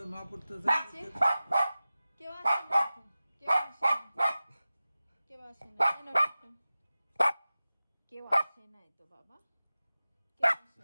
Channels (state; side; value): inverted; both; correlation -0.96